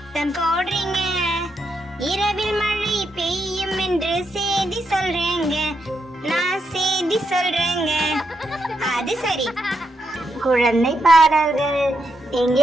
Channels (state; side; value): normal; both; correlation 0.81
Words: போடுறீங்க? இரவில் மழை பெய்யும் என்று செய்தி சொல்றேங்க, நான் செய்தி சொல்றேங்க. அது சரி, குழந்தை பாடல்கள்.